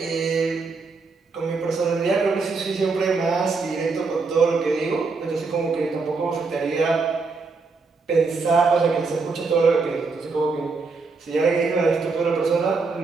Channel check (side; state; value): left; quieter; 4.3 dB